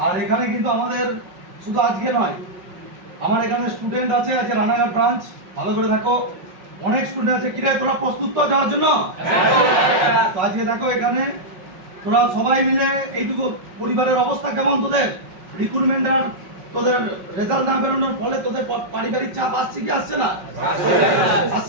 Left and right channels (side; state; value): left; late; 5.4 ms